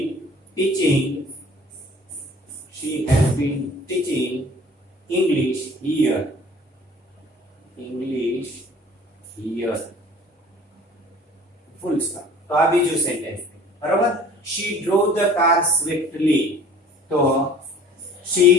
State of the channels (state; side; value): normal; both; correlation 0.49